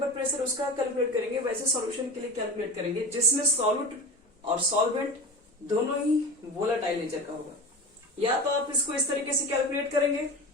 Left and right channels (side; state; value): both; normal; correlation 0.30